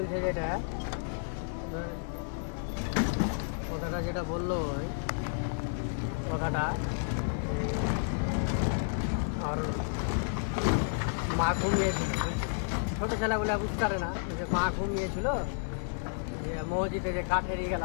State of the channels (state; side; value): silent; right; 57 dB below the other